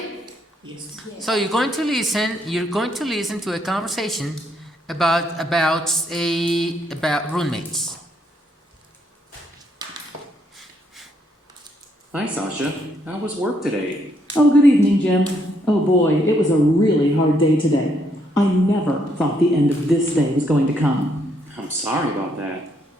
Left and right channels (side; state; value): both; normal; correlation 0.73